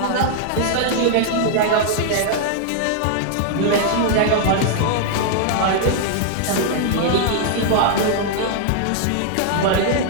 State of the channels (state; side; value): different; both; correlation -0.01